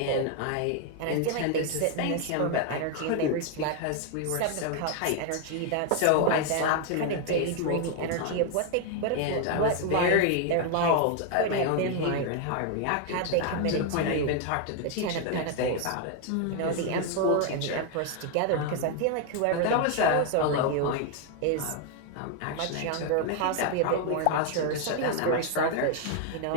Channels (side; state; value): both; different; correlation 0.01